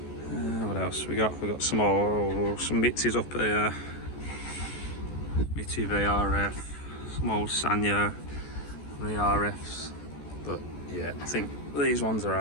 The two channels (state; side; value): late; right; 14 ms